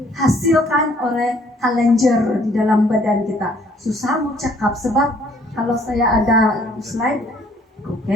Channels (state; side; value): normal; both; correlation 0.61